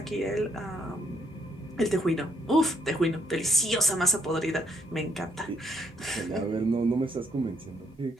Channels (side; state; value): both; normal; correlation 0.73